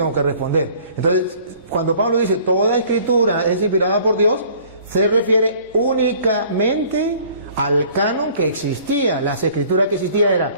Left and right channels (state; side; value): inverted; both; correlation -0.53